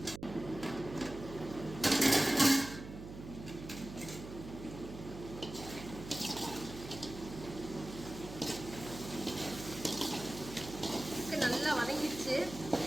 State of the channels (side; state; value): right; noise; hum, 12 dB below the sound